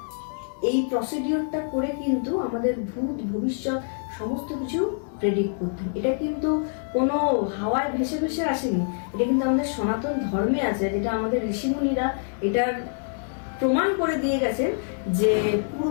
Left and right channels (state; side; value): silent; right; digital silence